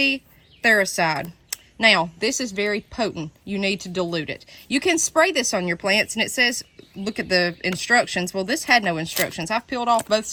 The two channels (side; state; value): both; identical; correlation 1.00